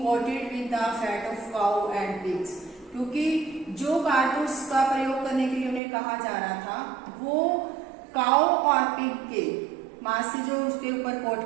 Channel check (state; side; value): drops out; left; at 5.8 s